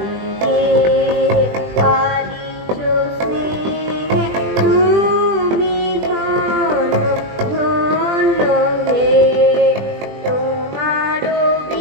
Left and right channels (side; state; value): left; late; 20 ms